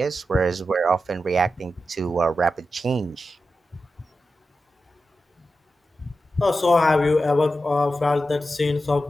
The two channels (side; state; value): both; normal; correlation 0.90